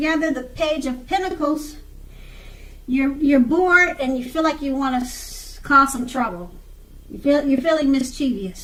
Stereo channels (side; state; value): both; identical; correlation 1.00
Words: the Page of Pentacles, you're bored and you feel like you want to cause some trouble. You're feeling